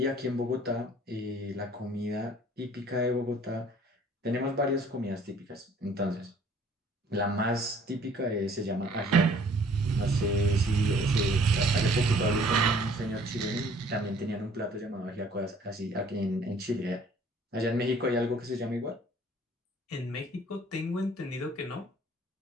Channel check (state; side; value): normal; both; correlation 0.56